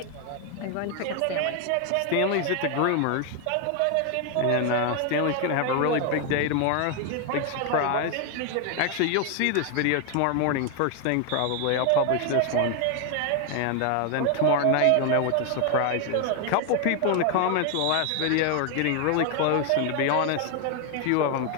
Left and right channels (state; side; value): different; both; correlation 0.01